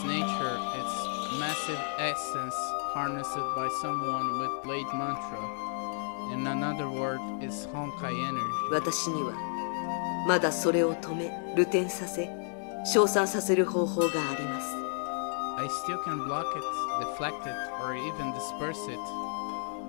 nature, it's massive essence harnessed by someone with blade mantra. In another word, is Honkai energy. 私にはまだそれを止め、流転させ、消散させる方法があります。 I still can block it, deflect it, or even disperse it.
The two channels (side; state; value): right; silent; 57 dB below the other